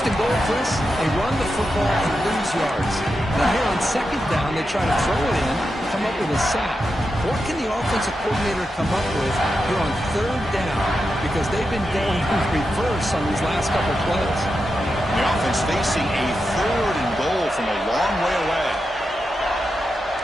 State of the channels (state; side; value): normal; both; correlation 0.88